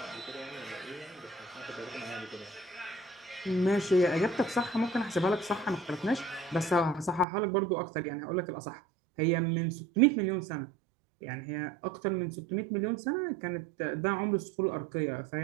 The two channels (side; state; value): left; drops out; at 7.2 s